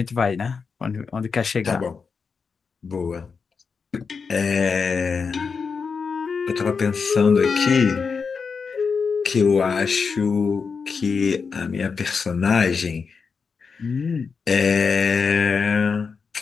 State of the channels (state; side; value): quieter; right; 5.4 dB